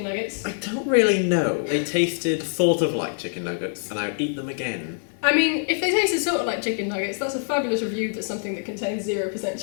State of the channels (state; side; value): silent; right; 62 dB below the other